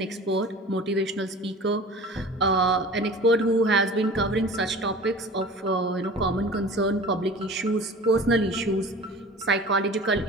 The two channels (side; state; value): both; normal; correlation 0.40